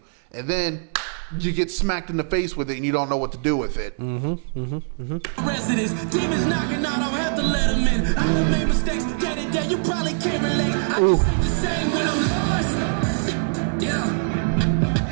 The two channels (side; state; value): left; silent; 61 dB below the other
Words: and then you get smacked in the face with it and you don't know what to do with it. Residents, demons knocking, I don't have to let them in. I done made mistakes day to day. You probably can't relate. I just ain't the same when I'm lost. Yeah.